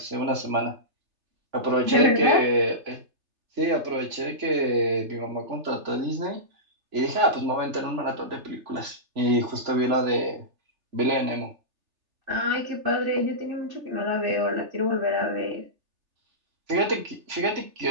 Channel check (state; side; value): late; left; 3.3 ms